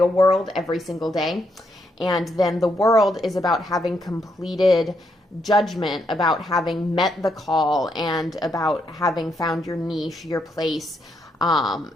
world every single day. And then the World is about having completed judgment, about having met the call, and about having found your niche, your place,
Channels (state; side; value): normal; both; correlation 0.78